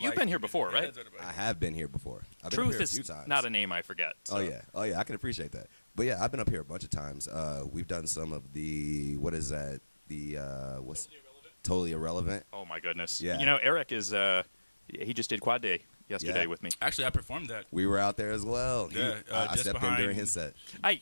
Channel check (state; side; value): inverted; both; correlation -1.00